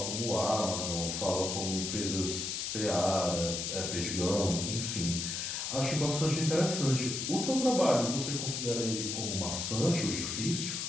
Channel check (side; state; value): left; noise; hiss, 3 dB below the sound